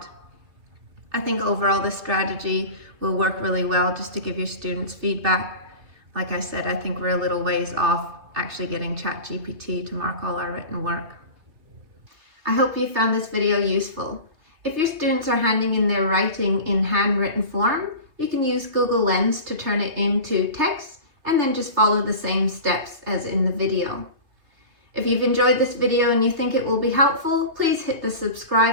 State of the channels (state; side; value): late; left; 3.3 ms